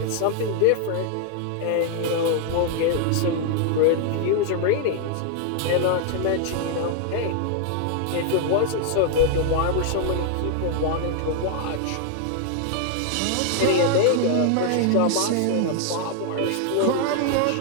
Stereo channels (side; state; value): both; different; correlation 0.00